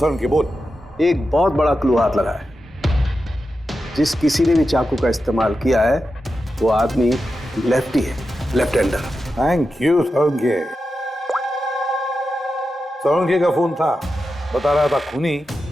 उनके बोल। एक बहुत बड़ा क्लू हाथ लगा है। जिस किसी ने भी चाकू का इस्तेमाल किया है वो आदमी लेफ्टी है, लेफ्ट हैंडर। थैंक यू सोंगे। सोंगे का फोन था, बता रहा था खूनी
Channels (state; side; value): normal; both; correlation 0.90